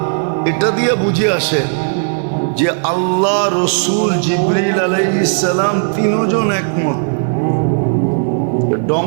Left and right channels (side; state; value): left; silent; digital silence